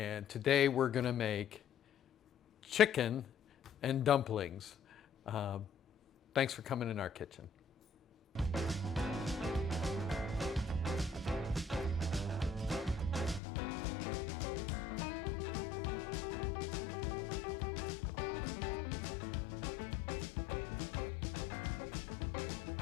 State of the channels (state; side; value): drops out; right; at 13.4 s